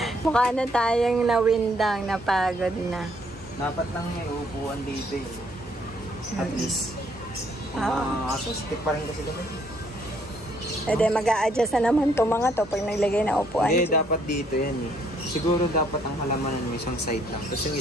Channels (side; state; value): both; normal; correlation 0.67